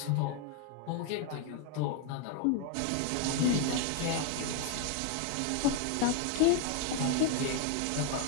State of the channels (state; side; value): different; both; correlation 0.01